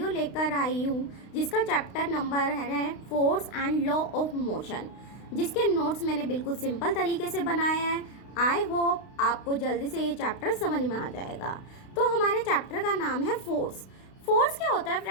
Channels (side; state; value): right; late; 32 ms